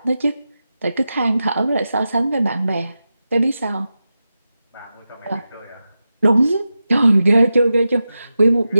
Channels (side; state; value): both; inverted; correlation -0.92